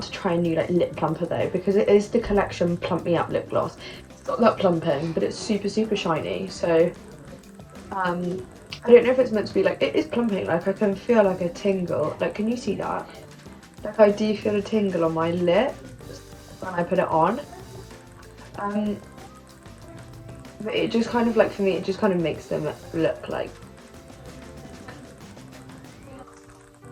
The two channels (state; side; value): identical; both; correlation 1.00